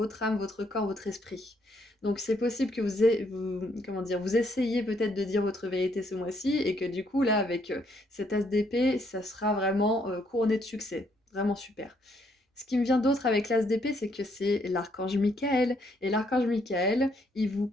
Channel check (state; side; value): normal; both; correlation 0.71